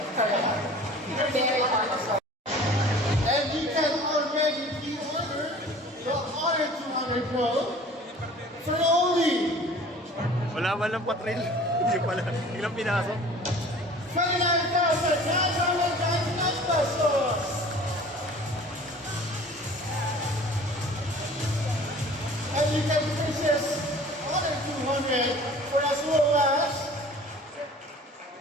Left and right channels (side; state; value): both; normal; correlation 0.46